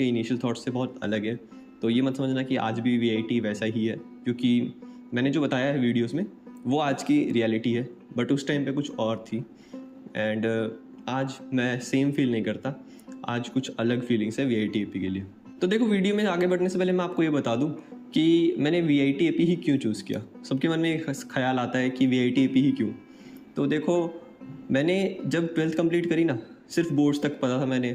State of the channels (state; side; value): identical; both; correlation 1.00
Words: इनिशियल थॉट्स से बहुत अलग है। तो ये मत समझना कि आज भी वीआईटी वैसा ही है, क्योंकि मैंने जो बताया है वीडियोस में वो आज की रियलिटी है, बट उस टाइम पे कुछ और थी। एंड आज मैं सेम फील नहीं करता, आज कुछ अलग फीलिंग्स है वीआईटी के लिए। तो देखो, वीडियो में आगे बढ़ने से पहले मैं आपको ये बता दूं कि मैंने वीआईटी ही क्यों चूज़ किया। सबके मन में एक ख्याल आता है कि वीआईटी ही क्यों। तो देखो, मैंने जब 12th कंप्लीट करी ना, सिर्फ बोर्ड्स तक पता था, मैंने